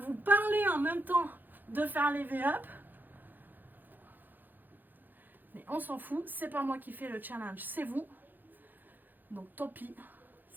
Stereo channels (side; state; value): left; late; 0.088 ms